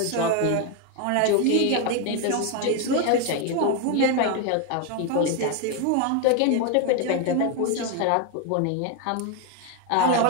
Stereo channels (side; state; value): both; different; correlation 0.01